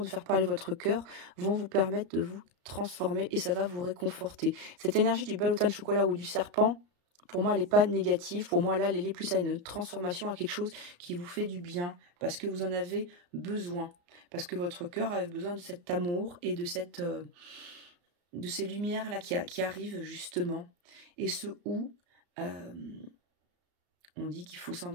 de faire parler votre cœur vont vous permettre de vous transformer et ça va vous réconforter. Cette énergie du balotin de chocolat ou du serpent, pour moi, elle n'est pas négative. Pour moi, là, elle est liée plus à une transformation, à quelque chose qui vous fait du bien parce que vous en avez besoin. Parce que votre cœur a besoin de cet amour et de ces lumières-là qui arrivent justement. Et on dit qu'il faut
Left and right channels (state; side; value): late; left; 34 ms